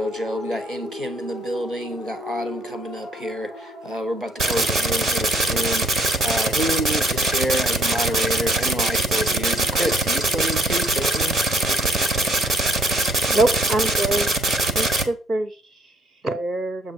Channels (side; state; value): both; normal; correlation 0.65